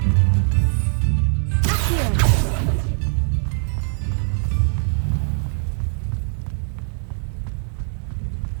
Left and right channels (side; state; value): left; silent; digital silence